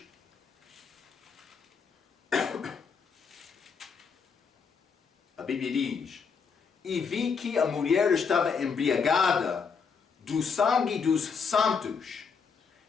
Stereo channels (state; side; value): quieter; right; 5.8 dB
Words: Bíblia diz: e vi que a mulher estava embriagada do sangue dos santos